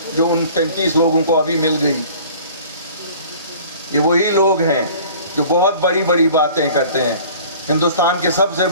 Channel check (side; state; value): both; inverted; correlation -0.47